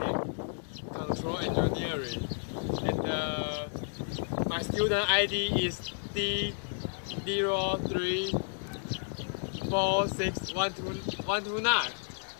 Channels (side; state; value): right; silent; digital silence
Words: control engineering, and my student ID is D03461229,